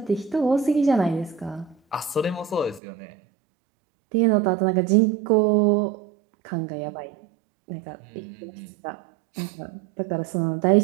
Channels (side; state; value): left; drops out; at 2.8 s